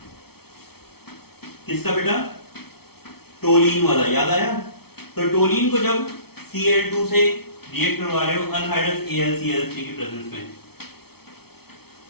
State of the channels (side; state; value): right; late; 0.96 ms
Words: किसका बेटा? टोलीन वाला, याद आया? तो टोलीन को जब Cl2 से रिएक्ट करवा रहे हो अनहाइड्रस AlCl3 की प्रेजेंस में,